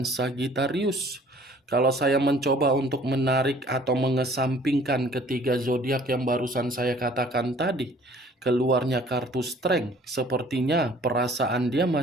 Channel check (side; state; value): both; normal; correlation 0.54